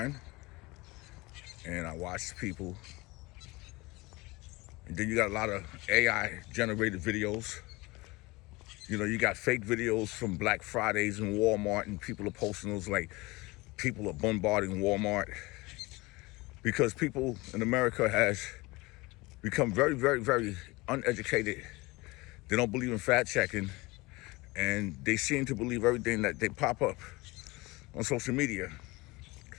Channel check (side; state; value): right; quieter; 22.9 dB